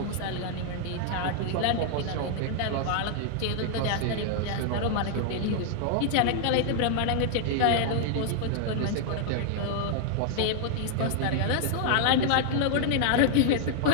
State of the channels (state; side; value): different; both; correlation 0.00